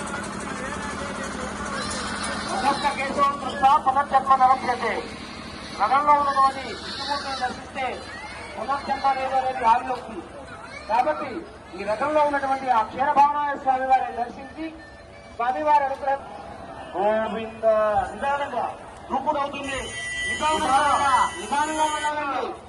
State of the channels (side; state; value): both; identical; correlation 1.00